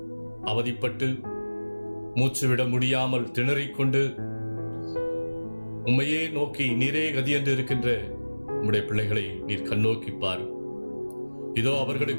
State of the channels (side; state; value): both; inverted; correlation -1.00